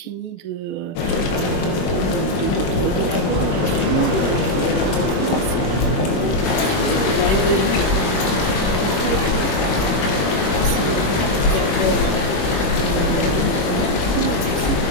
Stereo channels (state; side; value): late; right; 21 ms